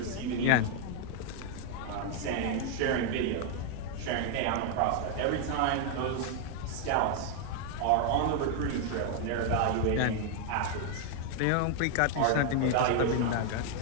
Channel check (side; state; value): both; different; correlation 0.00